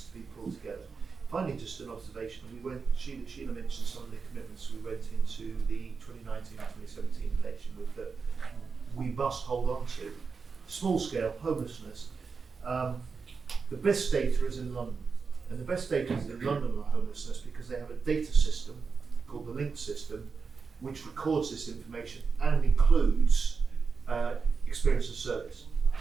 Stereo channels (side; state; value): left; quieter; 5.1 dB